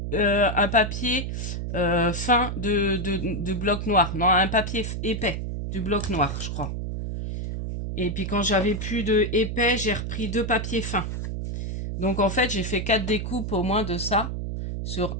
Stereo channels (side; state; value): right; noise; hum, 4 dB below the sound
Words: un papier fin de bloc noir. Non, un papier épais du bloc noir, je crois. Et puis quand j'avais plus de épais, j'ai repris deux papiers fins. Donc en fait, j'ai fait 4 découpes au moins de ça.